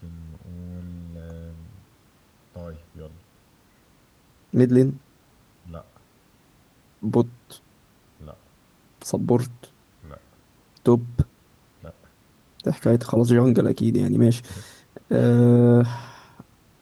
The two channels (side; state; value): both; identical; correlation 1.00